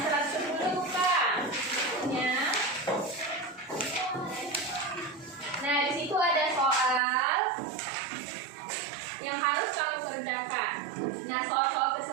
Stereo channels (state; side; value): drops out; left; at 7.0 s